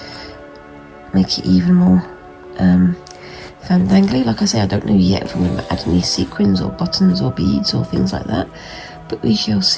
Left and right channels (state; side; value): identical; both; correlation 1.00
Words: make it even more fandangly. Like I say, I don't know yet if I'm going to add any sequins or buttons or beads or things like that, but we shall